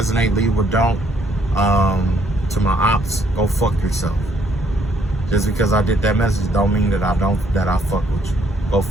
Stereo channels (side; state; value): both; normal; correlation 0.68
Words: leave what don't. To my ops, go fuck yourself. Just because I did that message don't mean that I fuck with you. Go